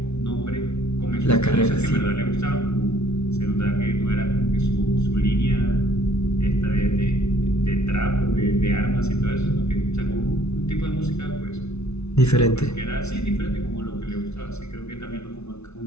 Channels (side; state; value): right; late; 0.81 ms